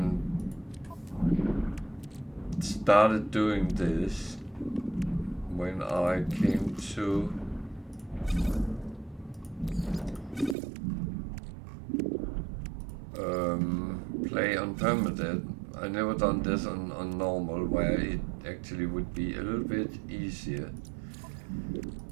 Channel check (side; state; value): left; drops out; at 10.6 s